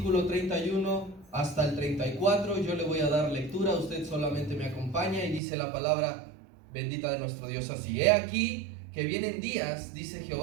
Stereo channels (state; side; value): drops out; left; at 5.4 s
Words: 31 hasta el 34. Yo le voy a dar lectura, usted solamente me acompaña y dice la palabra bendita de nuestro Dios así: He aquí que vienen días, dice